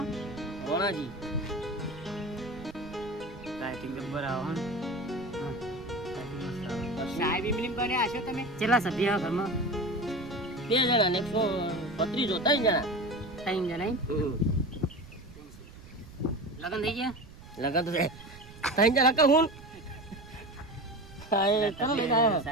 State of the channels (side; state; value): right; noise; rumble, 18 dB below the sound